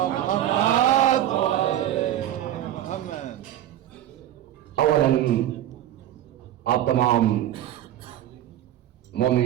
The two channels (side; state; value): left; quieter; 12.3 dB